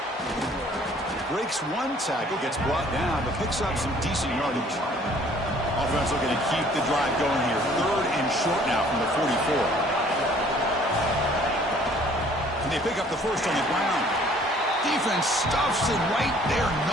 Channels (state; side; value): normal; both; correlation 0.56